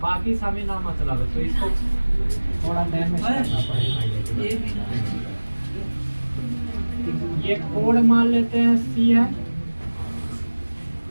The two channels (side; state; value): both; inverted; correlation -1.00